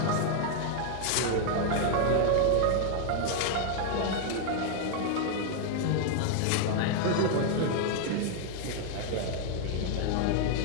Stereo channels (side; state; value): both; different; correlation -0.01